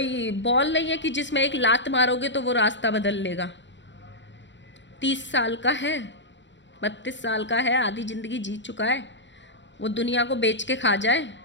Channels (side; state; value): right; late; 0.53 ms